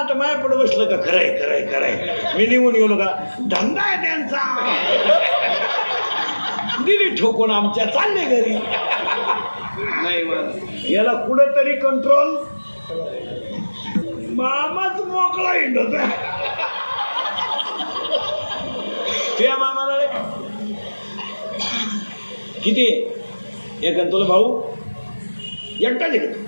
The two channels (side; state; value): both; inverted; correlation -1.00